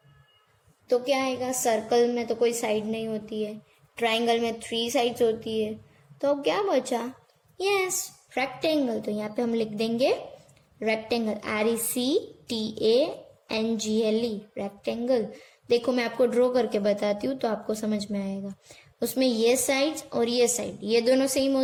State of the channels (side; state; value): both; identical; correlation 1.00